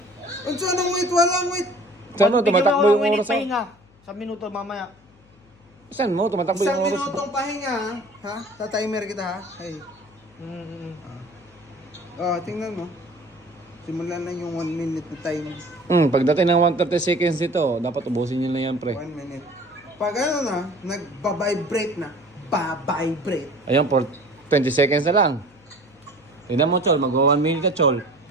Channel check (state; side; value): noise; left; hum, 29 dB below the sound